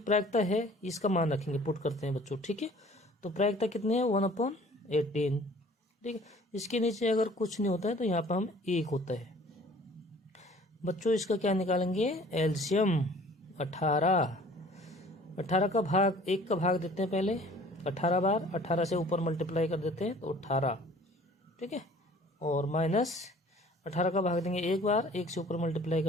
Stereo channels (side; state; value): both; normal; correlation 0.51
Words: प्रायिकता है, इसका मान रखेंगे, पुट करते हैं बच्चों। ठीक है, तो प्रायिकता कितनी है? 1/18। ठीक है, इसके नीचे अगर कुछ नहीं होता है तो यहाँ पर हम 1 होता है बच्चों। इसका क्या निकालेंगे? एलसीएम 18। 18 का भाग 1 का भाग देते हैं पहले 18 बार, 18 से ऊपर मल्टीप्लाई कर देते हैं तो 18। ठीक है, और माइनस 18 का भाग देंगे 1 बार, 1 से ऊपर मल्टीप्लाई